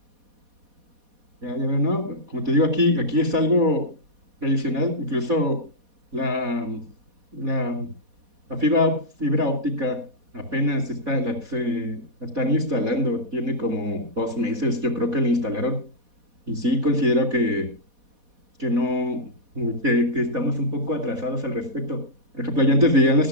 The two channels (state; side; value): late; left; 4.1 ms